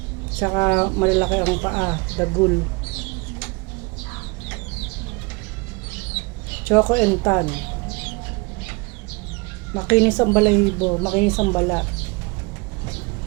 Saka malalaki ang paa, dagul. Choco and Tan. Makinis ang balahibo, makinis ang balat.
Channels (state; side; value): quieter; left; 27.9 dB